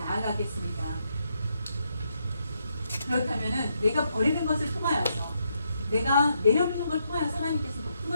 그렇다면은 내가 버리는 것을 통하여서 내가 내려놓는 걸 통하여서 하나님께서 높은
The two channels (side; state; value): both; inverted; correlation -0.78